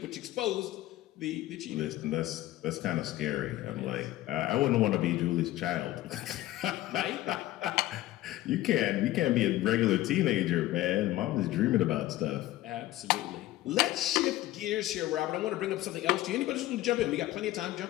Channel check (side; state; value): right; quieter; 15.7 dB